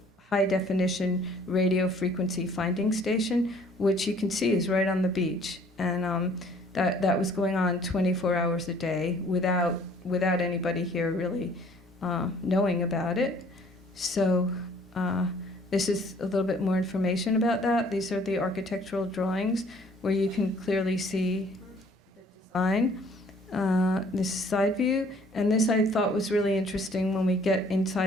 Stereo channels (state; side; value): normal; both; correlation 0.57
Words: high-definition radio frequency finding station, which you can see is right on the beach. And that was going on 24 hours a day without anybody here really knowing about it. So this is a little bit more information about that. These are the architectural drawings where you can clearly see the design. This is side view, and this I thought was really interesting when we get